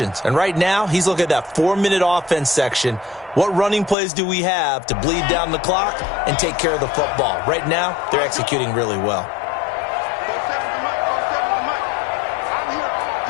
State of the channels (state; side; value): drops out; right; at 4.0 s